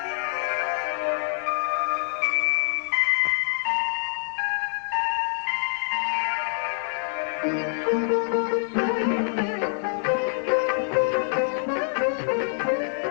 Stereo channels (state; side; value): silent; right; 61 dB below the other